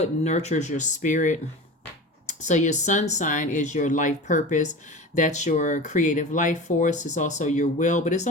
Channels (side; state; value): both; normal; correlation 0.32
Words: nurtures your spirit. So your sun sign is your life purpose. That's your creative life force. It's also your will, but it's